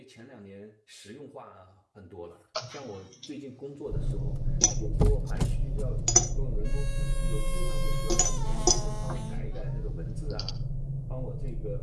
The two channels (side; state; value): both; identical; correlation 1.00